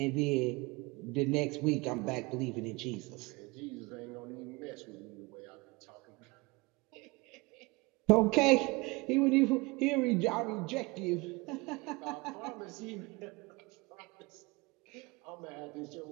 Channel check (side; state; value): left; quieter; 25.1 dB